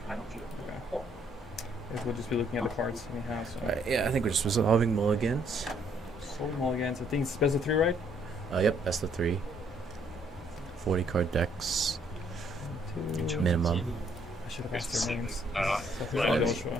Okay. Guess we'll just be looking at the cards anyhow. So. Alright, yeah, I think we're just resolving mulligans. Soul mulligans. I think it's best of 3, right? Yep, that's the 3. 40 card decks, 2. minimum. I should have asked their names. Fine.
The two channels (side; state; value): both; normal; correlation 0.67